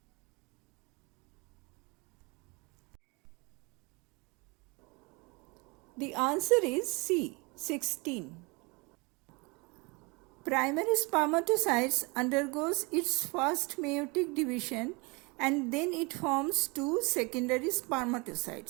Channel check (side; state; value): left; quieter; 27.9 dB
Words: The answer is C, 16. Primary spermatocytes undergoes its first meiotic division and then it forms two secondary